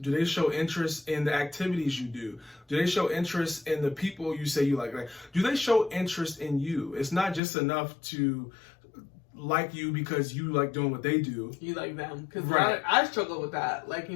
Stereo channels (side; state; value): right; drops out; at 7.4 s